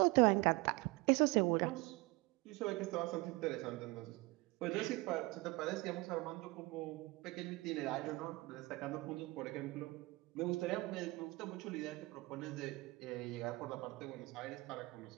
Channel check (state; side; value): quieter; left; 23.5 dB